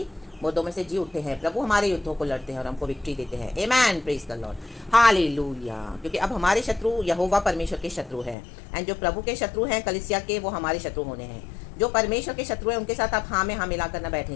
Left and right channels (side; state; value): right; drops out; at 8.3 s